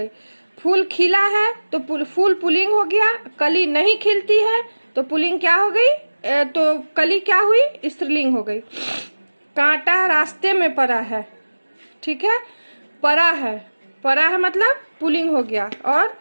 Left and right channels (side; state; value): both; inverted; correlation -1.00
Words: फूल खिला है तो फूल पुल्लिंग हो गया, कली नहीं खिलती है तो पुल्लिंग क्या हो गई? तो कली क्या हुई? स्त्रीलिंग हो गई। कांटा रास्ते में पड़ा है, ठीक है, पड़ा है, पड़ा है मतलब पुल्लिंग हो गया। और